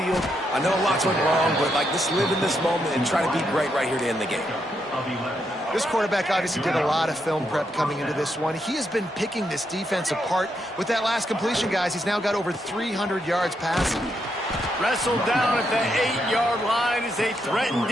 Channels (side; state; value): both; normal; correlation 0.80